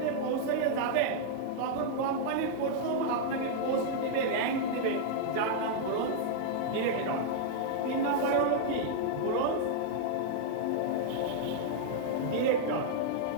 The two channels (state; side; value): different; both; correlation -0.01